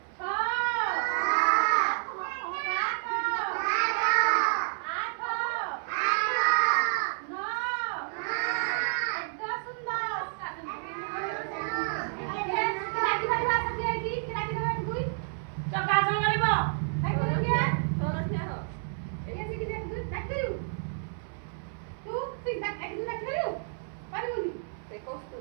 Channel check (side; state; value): left; silent; 58 dB below the other